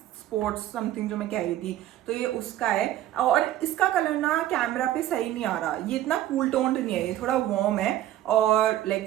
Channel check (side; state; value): left; quieter; 13.1 dB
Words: स्पोर्ट्स समथिंग, जो मैं कह रही थी. तो ये उसका है. और इसका कलर ना कैमरा पे सही नहीं आ रहा. ये इतना कूल टोन्ड नहीं है, ये थोड़ा वार्म है, और लाइक